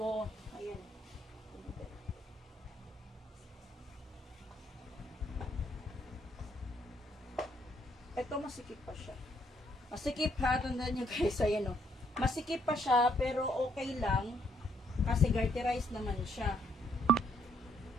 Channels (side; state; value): both; normal; correlation 0.71